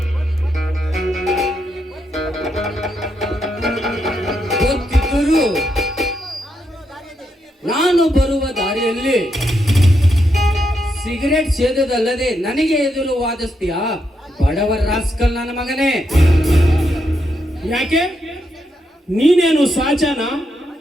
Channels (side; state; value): both; normal; correlation 0.81